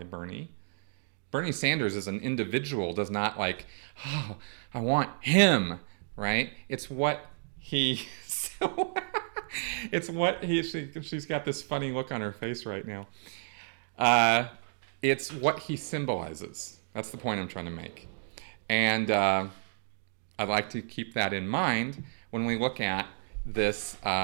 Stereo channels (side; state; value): left; silent; digital silence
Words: Bernie. Bernie Sanders as an individual does not like, oh, I want him, right? It's what he... it's what he... She's got this funny look on her face right now. It's what he symbolizes. That's the point I'm trying to make. And I'd like to keep that in mind when we look at this